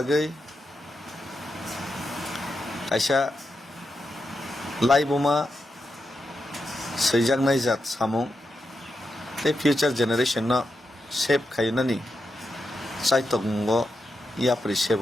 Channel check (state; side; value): normal; both; correlation 0.87